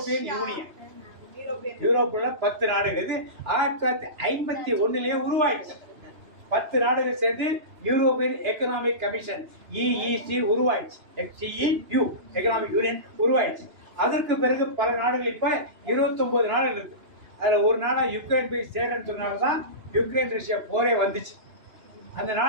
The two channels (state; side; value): late; left; 2.9 ms